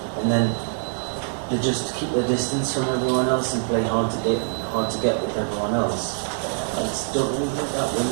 and then they just keep their distance from everyone else and play hard to get with everyone else. I just don't really think that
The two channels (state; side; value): silent; left; digital silence